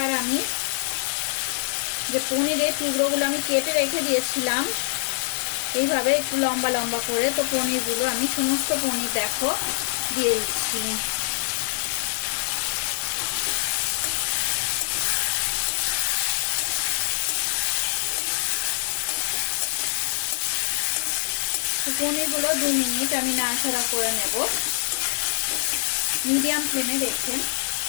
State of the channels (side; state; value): right; silent; 56 dB below the other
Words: আমি যে পনিরের টুকরোগুলো আমি কেটে রেখে দিয়েছিলাম এইভাবে একটু লম্বা লম্বা করে, তো পনিরগুলো আমি সমস্ত পনির দেখো দিয়ে দিচ্ছি। পনিরগুলো 2 মিনিট আমি নাড়াচাড়া করে নেব মিডিয়াম ফ্লেমে রেখে।